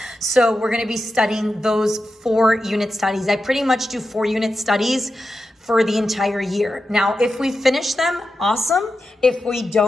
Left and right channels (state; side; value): normal; both; correlation 0.90